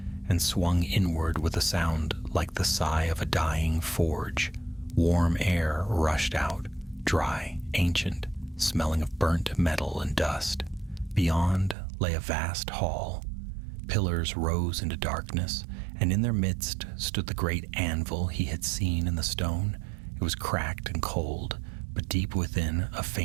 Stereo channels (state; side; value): drops out; left; at 11.8 s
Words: and swung inward with a sound like the sigh of a dying forge. Warm air rushed out, dry, ancient, smelling of burnt metal and dust. Beyond lay a vast hall. Pillars rose into darkness, and in their midst stood the great anvil he had seen in the stone. It was cracked and cold, but deep within a